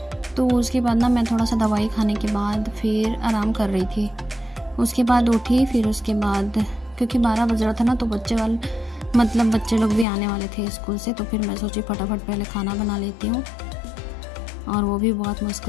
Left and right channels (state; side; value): drops out; right; at 10.1 s